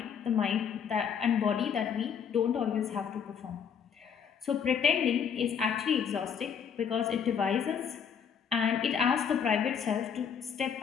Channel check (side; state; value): right; quieter; 7.3 dB